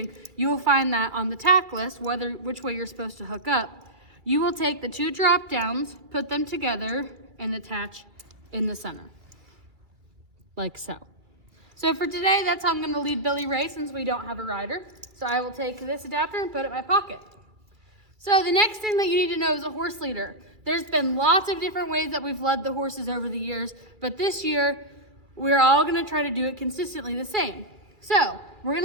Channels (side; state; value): left; late; 2.3 ms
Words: you will find that on the tack list, which way you're supposed to hook up. You will take the two drop downs, put them together, and attach in the center, like so. So for today, that's how I'm going to lead Billy Ray since we don't have a rider. So I will take this adapter and put it in my pocket. So the next thing that you need to know is a horse leader. There's been lots of different ways that we've led the horses over the years, but this year, we're all gonna try to do it consistently the same. So we're